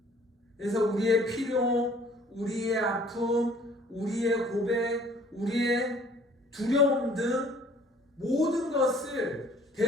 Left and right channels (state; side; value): normal; both; correlation 0.55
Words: 그래서 우리의 필요, 우리의 아픔, 우리의 고백, 우리의 두려움 등 모든 것을